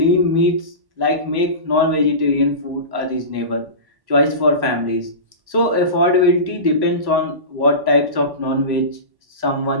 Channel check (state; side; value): late; left; 1.1 ms